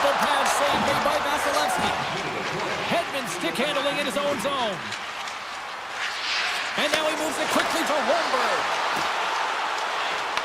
pad save made by Vasilevsky. Hedman stick handling in his own zone. And now he moves it quickly to Holmberg.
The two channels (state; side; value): identical; both; correlation 1.00